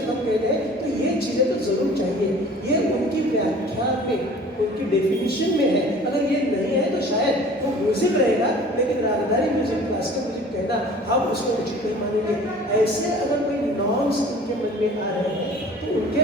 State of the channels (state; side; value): normal; both; correlation 0.47